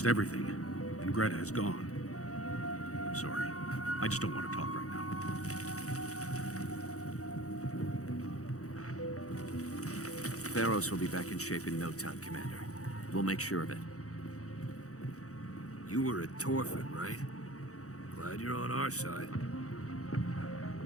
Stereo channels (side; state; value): right; late; 0.65 ms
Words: everything, and Greta is gone. I'm sorry. I just don't want to talk right now. Feros will be back in shape in no time, Commander. We'll make sure of it. You were at Torfin, right? Glad you're on our side.